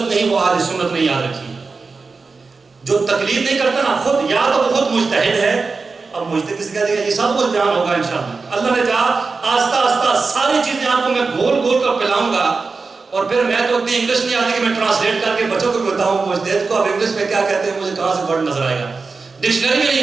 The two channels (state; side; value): quieter; left; 4.3 dB